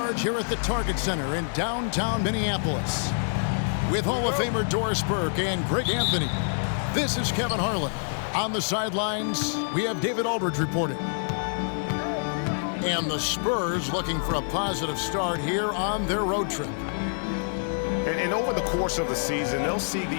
here at the Target Center in downtown Minneapolis. With Hall of Famer Doris Burke and Greg Anthony, this is Kevin Harlan. On the sidelines, we have David Aldridge reporting. And the Spurs looking for a positive start here on their road trip. And over the course of the season, they'll see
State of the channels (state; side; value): silent; right; digital silence